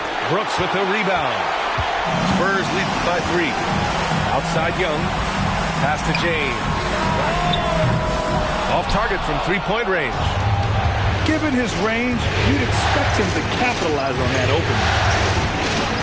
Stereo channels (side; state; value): both; identical; correlation 1.00